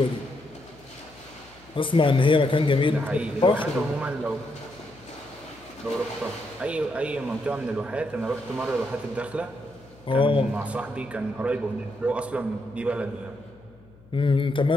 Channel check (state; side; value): noise; left; hum, 25 dB below the sound